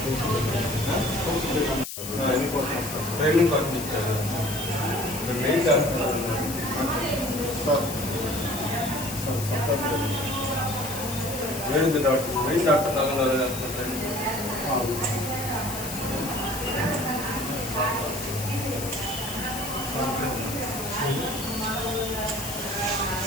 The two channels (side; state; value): left; noise; hiss, 8 dB below the sound